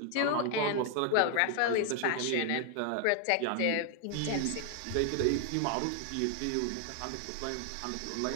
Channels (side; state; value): both; different; correlation 0.00